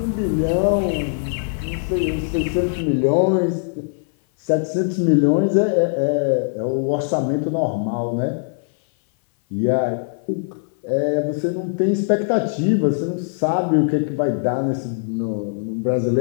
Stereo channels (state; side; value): silent; right; 58 dB below the other